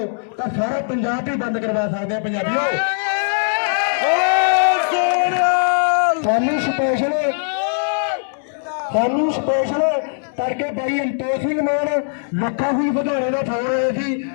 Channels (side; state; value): right; silent; digital silence